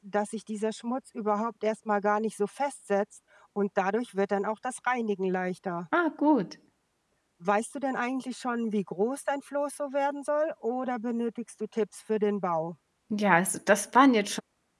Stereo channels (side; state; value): both; identical; correlation 1.00